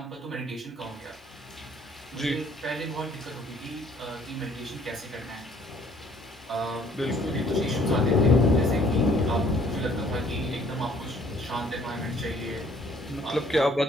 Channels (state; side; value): normal; both; correlation 0.60